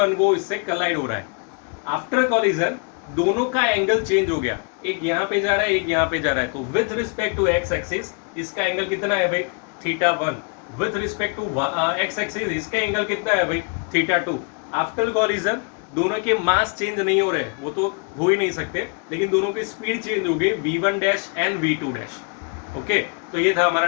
वो इससे कोलाइड हो रहा है. आफ्टर कॉलिजन दोनों का एंगल चेंज हो गया. एक यहाँ पे जा रहा है, एक यहाँ पे जा रहा है. तो with respect to X axis इसका एंगल कितना है भाई, θ1. With respect to X axis इसका एंगल कितना है भाई, θ2. आफ्टर कॉलिजन दोनों के मास चेंज नहीं हो रहे, वो तो हो ही नहीं सकते, लेकिन दोनों की स्पीड चेंज हो गई, v1 dash and v2 dash. Okay, तो ये था हमारा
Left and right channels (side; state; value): right; quieter; 36.2 dB